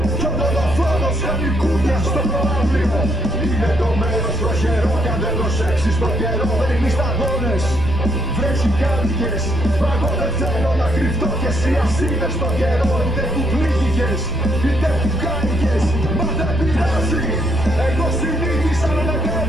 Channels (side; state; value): right; noise; rumble, 8 dB below the sound